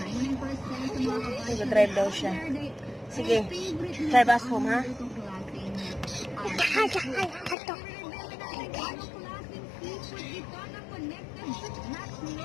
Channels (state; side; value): drops out; right; at 7.6 s